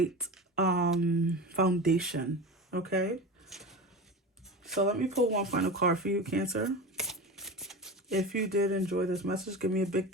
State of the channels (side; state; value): both; normal; correlation 0.28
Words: foundation. Okay. So let me pull one final card for you, Cancer. If you did enjoy this message, give me a big